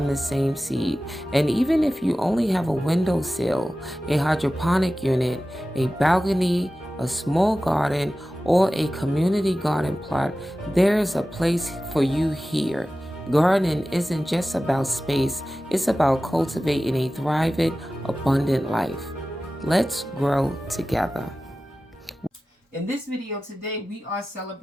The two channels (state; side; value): normal; both; correlation 0.95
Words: the same seed. And even if you only have a windowsill, a hydroponic unit, a balcony, a small garden, or a community garden plot, there's a place for you here. Gardening isn't just about space, it's about cultivating a thriving, abundant life. Let's grow together. In this video today, we are